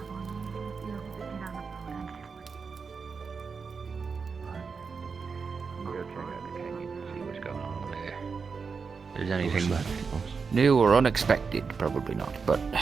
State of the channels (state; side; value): quieter; left; 5.3 dB